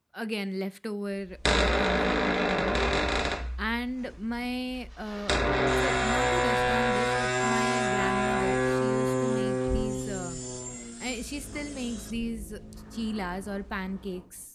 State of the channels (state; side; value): identical; both; correlation 1.00